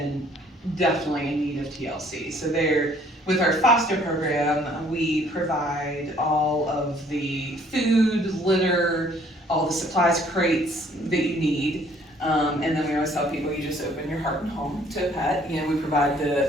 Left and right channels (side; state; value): both; normal; correlation 0.60